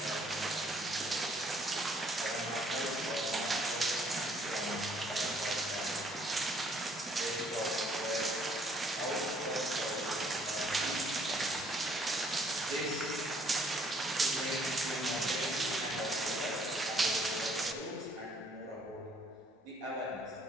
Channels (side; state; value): both; normal; correlation 0.63